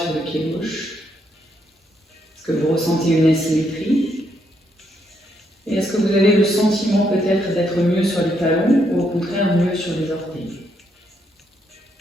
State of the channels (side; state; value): both; normal; correlation 0.76